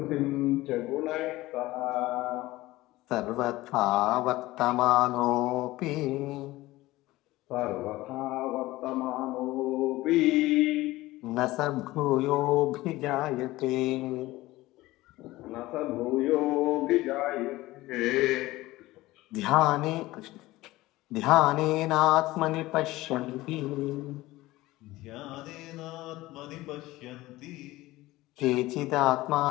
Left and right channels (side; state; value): right; quieter; 18.3 dB